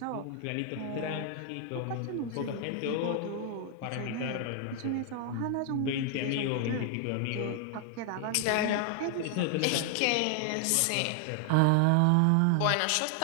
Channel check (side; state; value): both; different; correlation 0.00